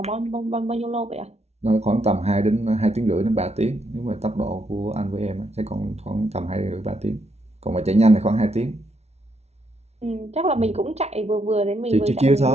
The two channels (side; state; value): left; late; 0.31 ms